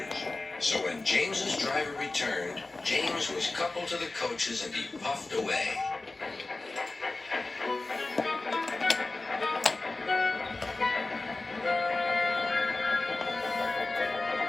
So when James's driver returned, James was coupled to the coaches and he puffed away.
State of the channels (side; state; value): right; quieter; 3.2 dB